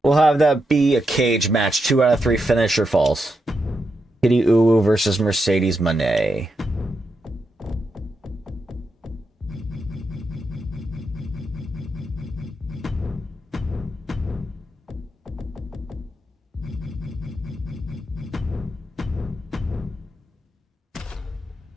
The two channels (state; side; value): normal; both; correlation 0.84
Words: We'll have that be a cage match. 2 out of 3 finisher falls. Kitty Uwu versus Mercedes Moné.